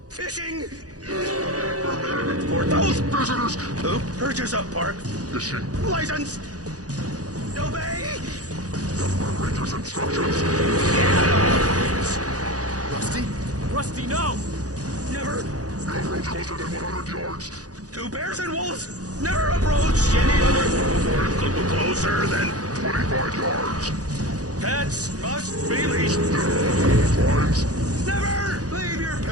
Fishing! For those visitors who purchase a park fishing license, obey the ranger's instructions. Rusty? Rusty, no! Never. No approach closer than 100 yards. Two bears and wolves never approach any other closer than 25 yards. Pets must be leashed. Fines. Never leave your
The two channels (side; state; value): left; late; 0.67 ms